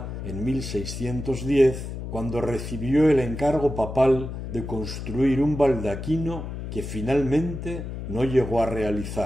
en 1610, cuando recibió el encargo papal de construir un baldaquino que finalmente no llegó a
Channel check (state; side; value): noise; left; hum, 7 dB below the sound